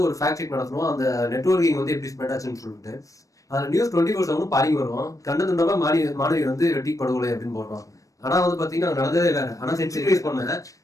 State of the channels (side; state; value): right; late; 0.16 ms